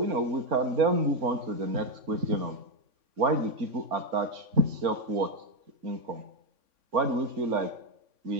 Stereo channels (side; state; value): left; late; 3.5 ms